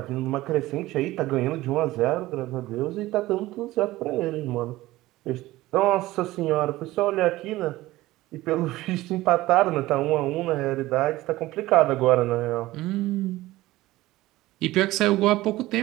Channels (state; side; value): quieter; left; 17.4 dB